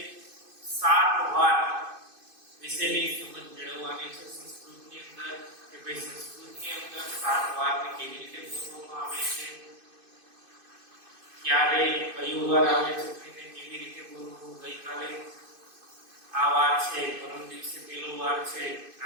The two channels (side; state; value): left; late; 2.5 ms